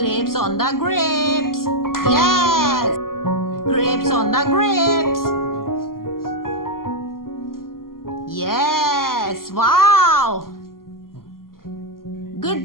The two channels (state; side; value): late; right; 0.92 ms